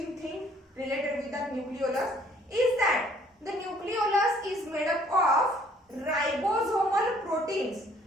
thing related with that nucleolus is that the nucleolus is made up of ribosomal proteins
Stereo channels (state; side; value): normal; both; correlation 0.60